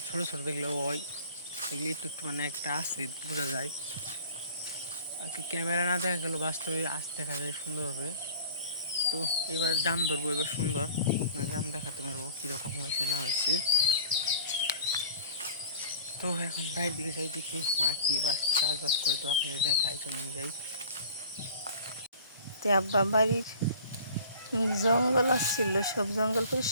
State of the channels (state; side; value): inverted; both; correlation -0.45